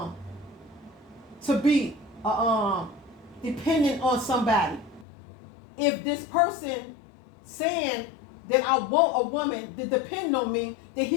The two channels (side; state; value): right; drops out; at 5.1 s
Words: be dependent on somebody. If this person saying that I want a woman to depend on me, then